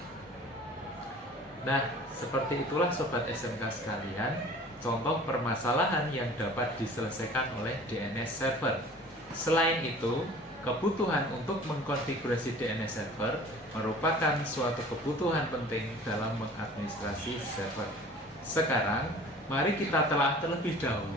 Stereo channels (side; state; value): both; normal; correlation 0.45